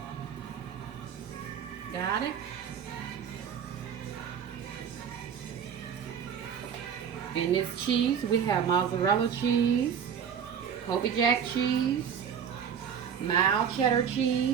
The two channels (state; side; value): quieter; left; 7.8 dB